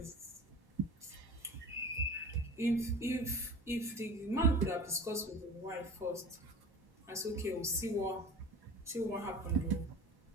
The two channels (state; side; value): normal; both; correlation 0.38